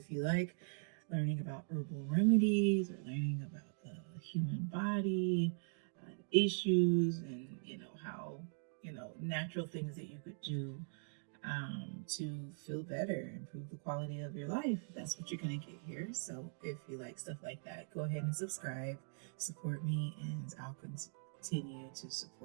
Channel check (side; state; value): left; silent; digital silence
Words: you like learning about herbal remedies or learning about the human body, issues and how natural things that you could do to feel better, improve the quality of your life. That's what you're going to get here. So if you like stuff like that, go ahead and subscribe, support me, and I'll continue to